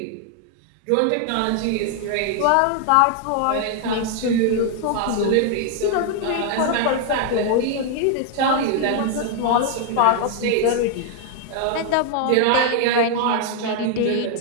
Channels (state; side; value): different; both; correlation 0.00